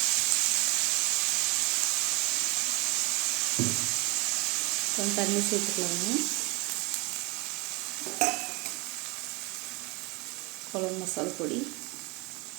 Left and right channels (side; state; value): left; quieter; 26.5 dB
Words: கொஞ்சம் தண்ணி சேர்த்துக்கலாங்க. குழம்பு மசாலா பொடி,